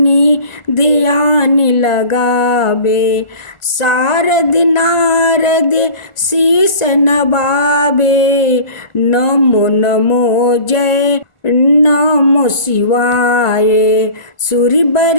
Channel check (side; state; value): right; late; 1.4 ms